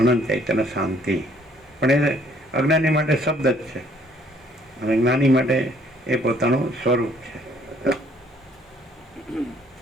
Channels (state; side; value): normal; both; correlation 0.62